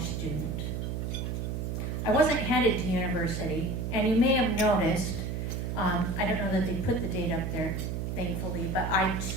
student. I wasn't headed to university, and you may have noticed, I don't know that they put the date up there, thankfully, but I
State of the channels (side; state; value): right; noise; hum, 2 dB below the sound